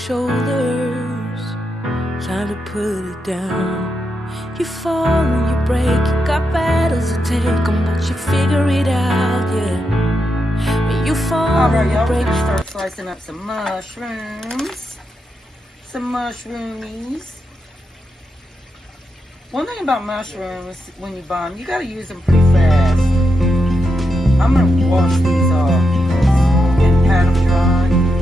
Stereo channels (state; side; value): normal; both; correlation 0.85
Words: time to put it down. You fall and you break, you got battles to take on, but you figure it out, yeah. When you fall Alright, and you y'all, we're break. going to start slicing up some mushrooms. Some mushroomies. One thing about mushrooms, when you buy them, you got to use them pretty fast. I'm going to wash these off and pat them dry.